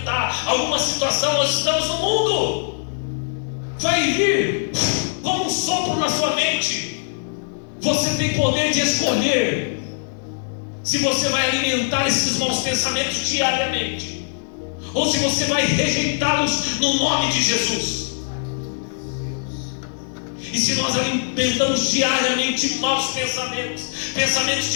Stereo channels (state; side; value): silent; right; digital silence